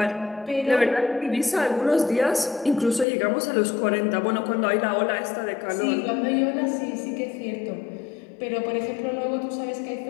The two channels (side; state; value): right; drops out; at 3.1 s